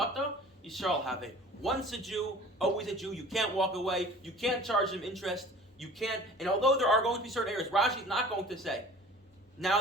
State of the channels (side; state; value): both; normal; correlation 0.45